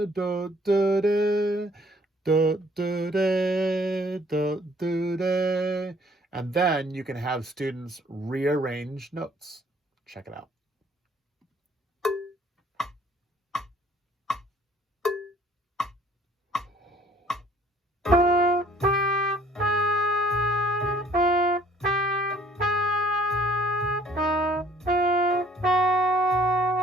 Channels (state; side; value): normal; both; correlation 0.59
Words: then you can have students rearrange notes. Check it out.